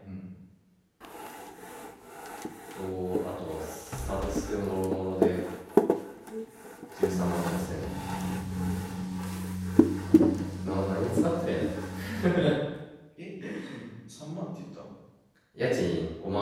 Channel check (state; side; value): identical; both; correlation 1.00